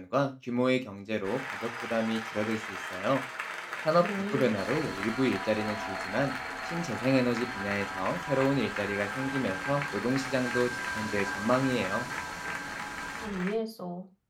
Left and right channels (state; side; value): identical; both; correlation 1.00